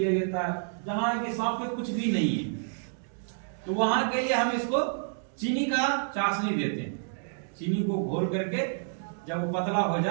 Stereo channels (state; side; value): silent; left; digital silence